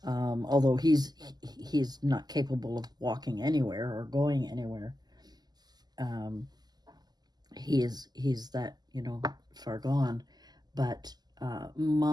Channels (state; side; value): late; left; 0.20 ms